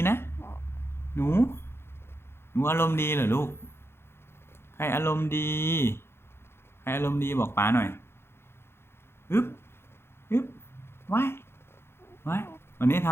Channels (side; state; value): right; late; 0.12 ms